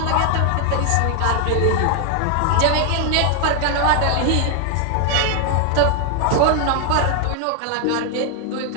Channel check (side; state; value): both; different; correlation 0.00